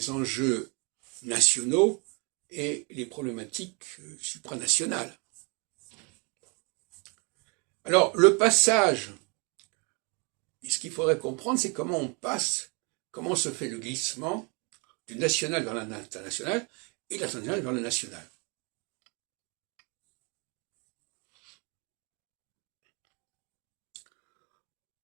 enjeux nationaux et les problématiques supranationales. Alors, le passage, ce qu'il faudrait comprendre, c'est comment on passe, comment se fait le glissement du national vers l'international et de l'international vers le national.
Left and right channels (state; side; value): quieter; left; 32.3 dB